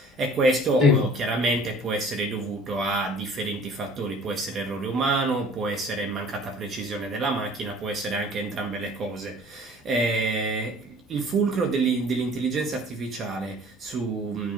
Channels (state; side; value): normal; both; correlation 0.50